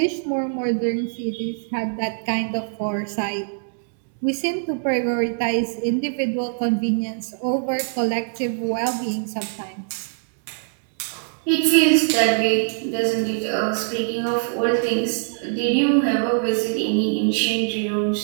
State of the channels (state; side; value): silent; left; digital silence